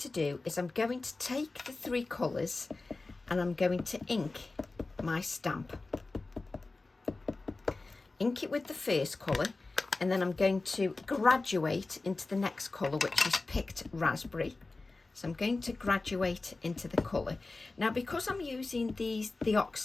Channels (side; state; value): right; quieter; 3.5 dB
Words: do is I'm going to take the 3 colours and I'm going to ink my stamp. Ink it with the first colour, and then I'm going to graduate into the next colour, which is Picked Raspberry. So I'm going to graduate into the colour. Now, because I'm using the